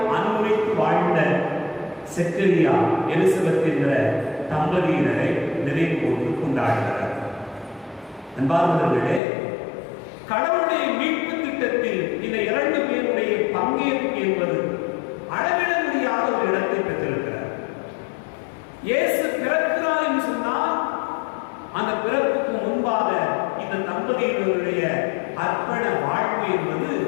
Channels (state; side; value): drops out; right; at 9.2 s